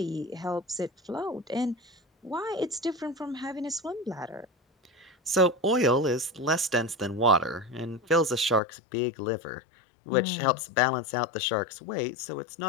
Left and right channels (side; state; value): right; drops out; at 8.6 s